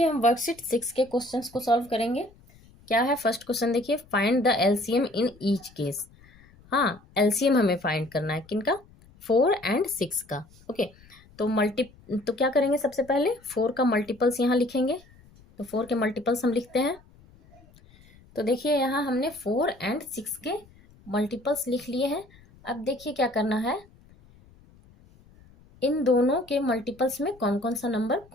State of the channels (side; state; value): left; noise; rumble, 26 dB below the sound